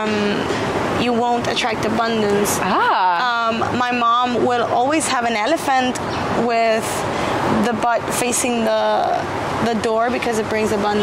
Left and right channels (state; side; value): identical; both; correlation 1.00